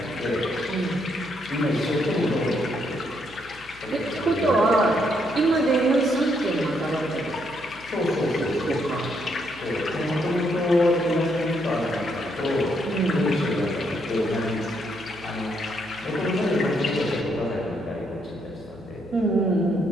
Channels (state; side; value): noise; left; hum, 23 dB below the sound